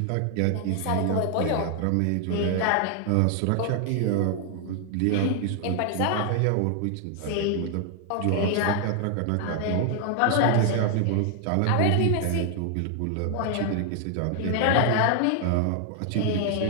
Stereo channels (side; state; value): both; different; correlation 0.00